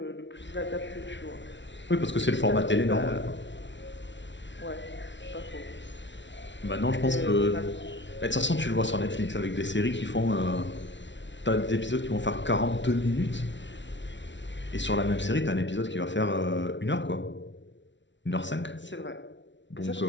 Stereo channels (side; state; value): right; late; 0.53 ms